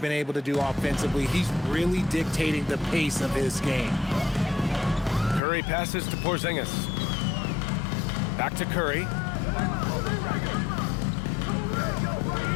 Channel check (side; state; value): right; drops out; at 5.4 s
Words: able to do offensively. He's really dictating the pace of his game. Curry passes to Porzingis. Back to Curry.